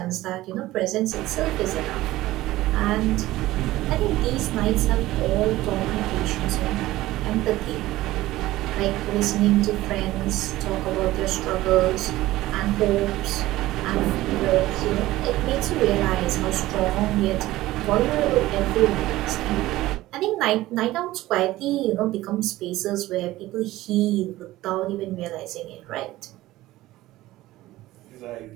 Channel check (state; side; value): quieter; left; 16.8 dB